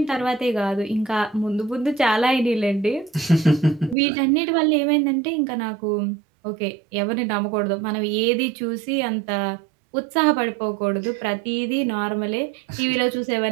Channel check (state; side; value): drops out; left; at 4.0 s